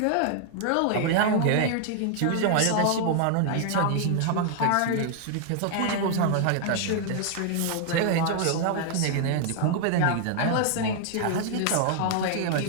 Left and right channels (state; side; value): different; both; correlation 0.00